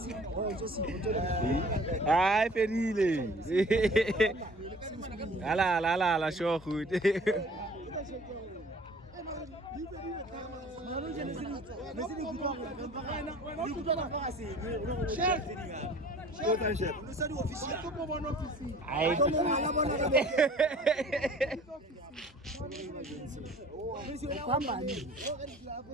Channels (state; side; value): normal; both; correlation 0.48